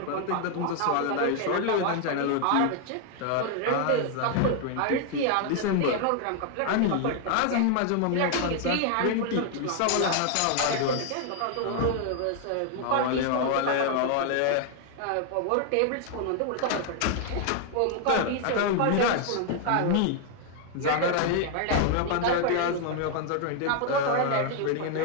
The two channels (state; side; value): different; both; correlation 0.00